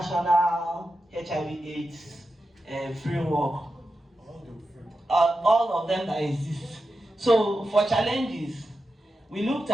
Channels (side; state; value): both; normal; correlation 0.90